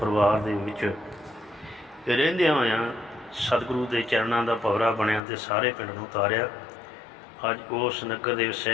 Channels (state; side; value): drops out; right; at 5.2 s